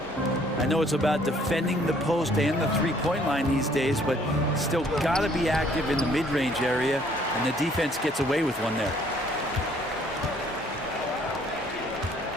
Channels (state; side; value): normal; both; correlation 0.61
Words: I know it's about defending the post and the three-point line these days, but still got to be active in the mid-range area, and the defense gets away with one there.